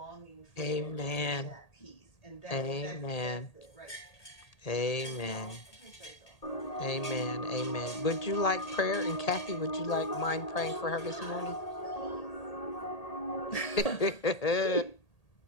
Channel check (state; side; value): late; right; 1.8 ms